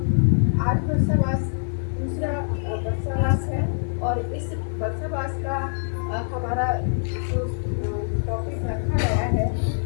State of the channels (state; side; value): silent; right; digital silence